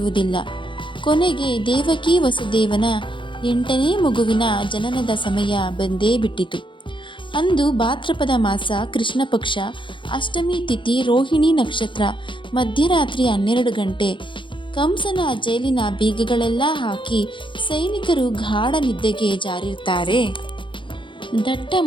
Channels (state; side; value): late; right; 0.24 ms